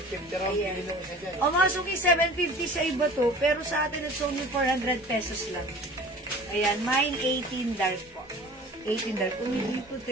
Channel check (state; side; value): normal; both; correlation 0.42